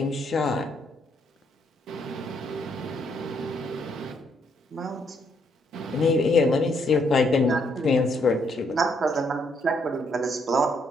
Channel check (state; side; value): normal; both; correlation 0.72